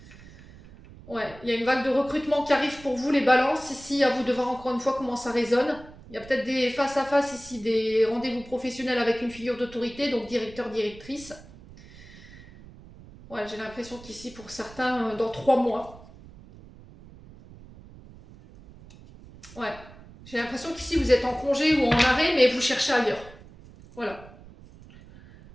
Ouais, il y a une vague de recrutement qui arrive pour vous, les balances. Ici, à vous de voir encore une fois comment ça résonne. Il y a peut-être des face-à-face ici, des rendez-vous professionnels avec une figure d'autorité, donc directeur, directrice. Ouais, j'ai l'impression qu'ici, pour certains, dans 3 mois. Ouais. J'ai l'impression qu'ici, vous êtes en congé ou en arrêt, mais vous cherchez ailleurs. Voilà.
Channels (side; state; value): right; noise; rumble, 20 dB below the sound